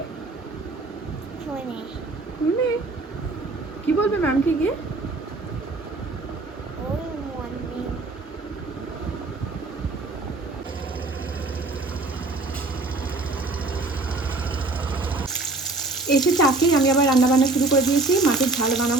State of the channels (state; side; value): quieter; left; 3.2 dB